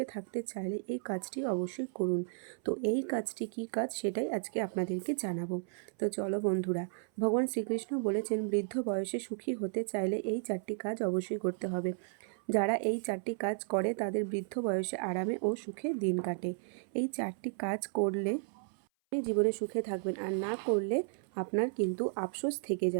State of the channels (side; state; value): left; silent; 55 dB below the other